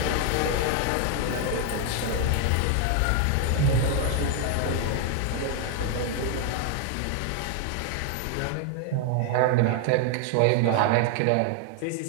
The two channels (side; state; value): both; different; correlation 0.00